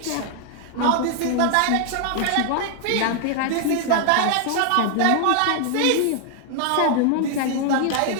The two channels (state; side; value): different; both; correlation 0.00